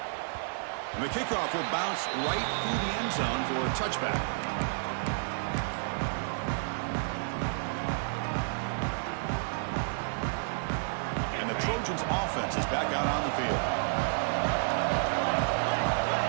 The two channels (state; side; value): silent; left; digital silence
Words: And the kickoff will bounce right through the end zone for a touchback. And the Trojans offense is back out on the field.